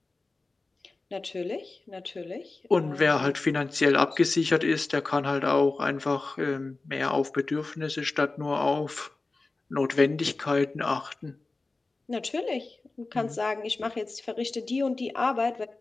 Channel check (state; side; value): quieter; right; 3.5 dB